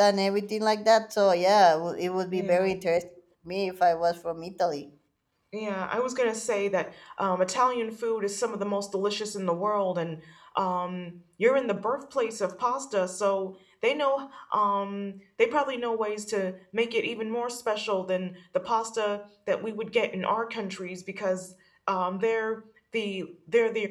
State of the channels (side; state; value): both; identical; correlation 1.00